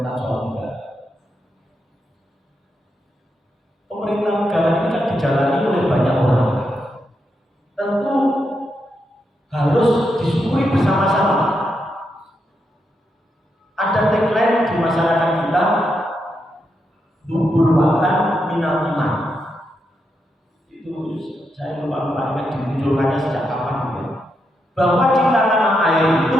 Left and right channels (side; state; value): both; normal; correlation 0.83